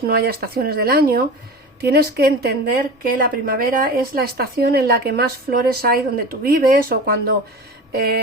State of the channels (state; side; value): normal; both; correlation 0.32